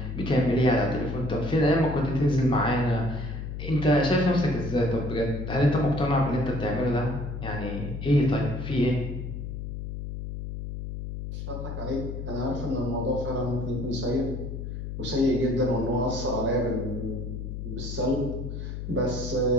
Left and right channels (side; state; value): left; noise; hum, 6 dB below the sound